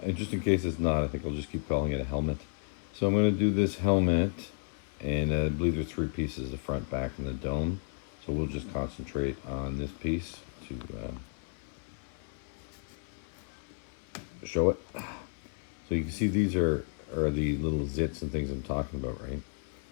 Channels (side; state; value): right; silent; 56 dB below the other